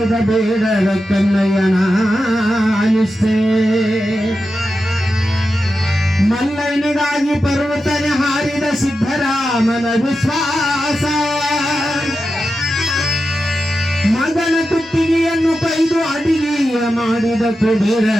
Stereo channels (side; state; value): both; normal; correlation 0.90